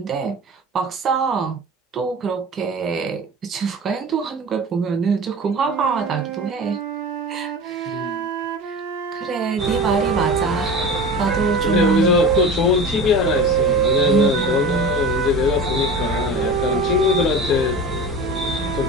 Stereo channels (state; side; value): normal; both; correlation 0.33